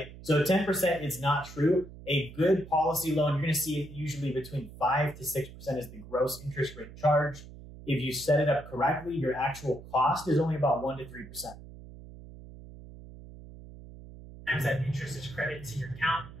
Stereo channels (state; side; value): noise; right; hum, 16 dB below the sound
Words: So 10% is not true. A good policy loan, you're going to see it usually between 5 to 6% is the gross interest rate charged. If you set it up correctly, your actual cost is only about 1 to 3%. Sometimes that interest is credited to your account.